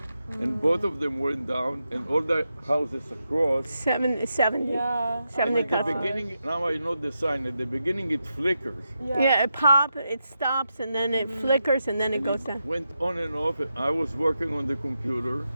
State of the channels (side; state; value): both; inverted; correlation -0.86